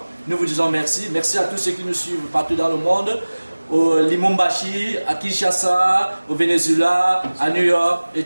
nous vous disons merci. Merci à tous ceux qui nous suivent partout dans le monde. Au Lumumbashi, à Kinshasa, au Venezuela, à New York et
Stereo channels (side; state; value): both; inverted; correlation -1.00